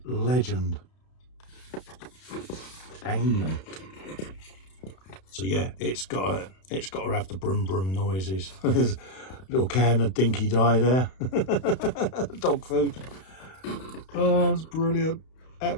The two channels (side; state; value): right; late; 32 ms